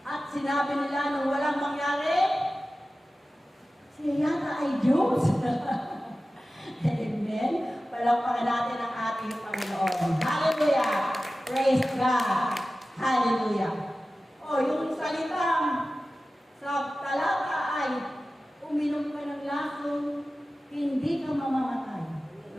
At sinabi nila nung walang mangyari, siya yata ay Diyos. Amen. Palakpakan natin ang ating Panginoon. Hallelujah. Praise God. Hallelujah. Yung salitang sa talata ay, uminom ka ng lason, hindi ka mamamatay.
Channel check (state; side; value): normal; both; correlation 0.95